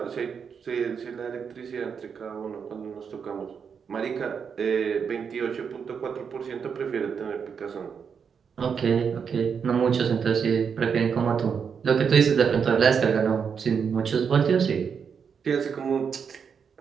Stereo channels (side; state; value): left; quieter; 6.6 dB